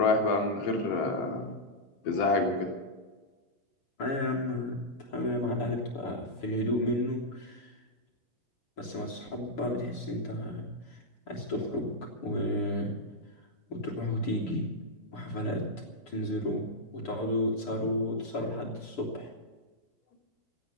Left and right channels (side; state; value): right; late; 6.9 ms